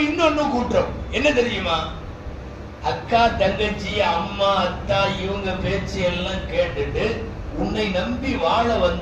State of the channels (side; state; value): both; identical; correlation 1.00